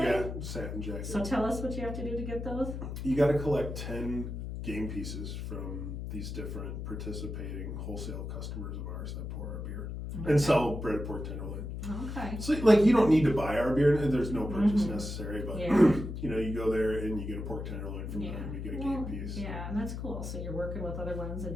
yeah, satin jacket. So tell us what you have to do to get those. You got to collect 10 game pieces from these different participating wholesale customers of ours that pour our beer and sell breaded pork tenderloin. Okay. So like you don't need to buy our beer, there's no purchase necessary, but Yeah. you know, you go there and you get a pork tenderloin from them, you get a game piece. Yeah, and that's cool. So you're working with other ones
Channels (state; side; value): noise; left; hum, 6 dB below the sound